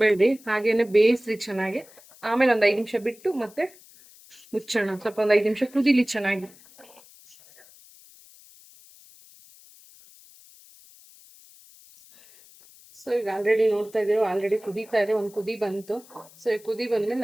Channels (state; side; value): noise; left; hiss, 24 dB below the sound